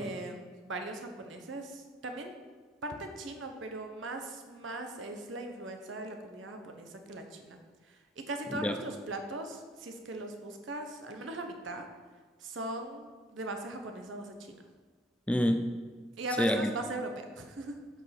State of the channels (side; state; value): both; normal; correlation 0.59